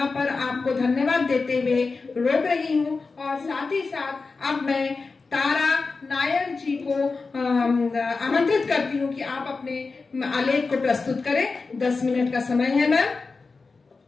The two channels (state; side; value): quieter; right; 4.2 dB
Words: पर आपको धन्यवाद देते हुए रोक रही हूँ, और साथ ही साथ अब मैं तारा नायर जी को आमंत्रित करती हूँ कि आप अपने आलेख को प्रस्तुत करें। 10 मिनट का समय है मैम।